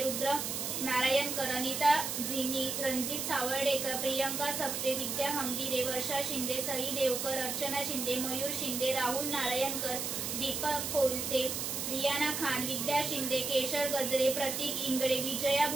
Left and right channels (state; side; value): noise; right; hiss, 2 dB below the sound